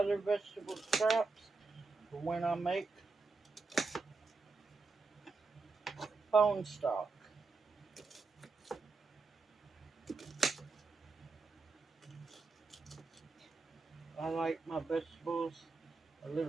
vegetable scraps for when I make bone stock. I like my vegetables a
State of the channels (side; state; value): left; quieter; 3.9 dB